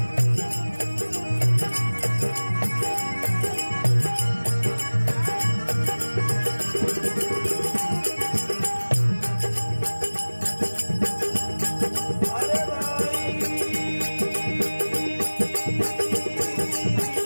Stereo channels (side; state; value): both; inverted; correlation -1.00